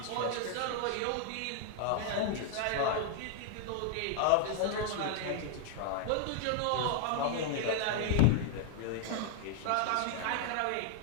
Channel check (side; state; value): both; different; correlation 0.00